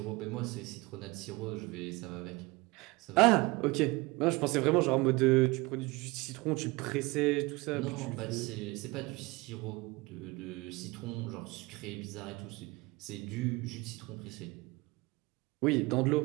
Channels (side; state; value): left; quieter; 23.5 dB